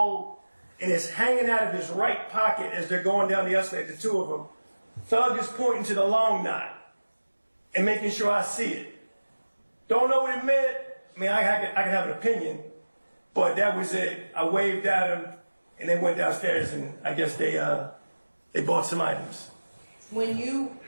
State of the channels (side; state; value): both; inverted; correlation -1.00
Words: and it's hanging out of his right pocket as they're going down the escalator, the two of them. Thug is pointing to the long knot and making sure I see it. Don't know what it meant. I mean, I could have an opinion, but that was it. I waved at him, and they went downstairs and I guess they bought some items. When you